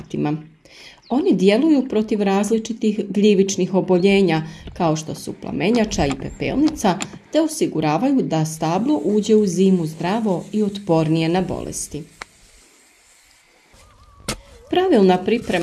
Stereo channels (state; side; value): identical; both; correlation 1.00